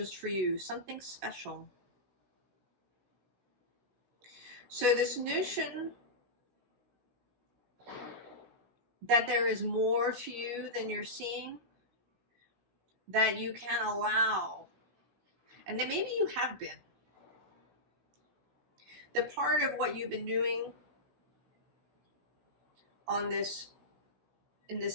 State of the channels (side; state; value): left; late; 16 ms